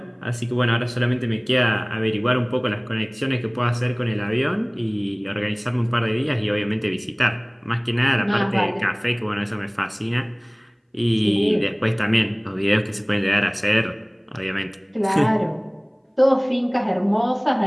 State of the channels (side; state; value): both; identical; correlation 1.00